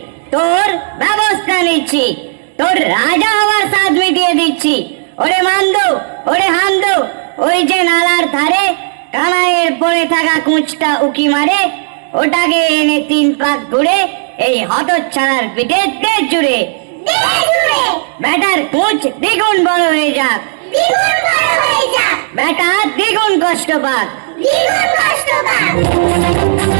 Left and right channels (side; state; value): left; silent; digital silence